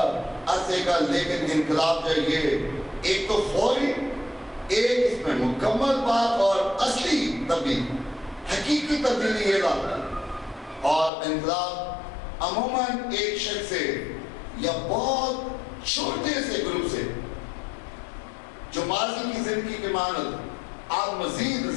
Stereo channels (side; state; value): right; drops out; at 11.1 s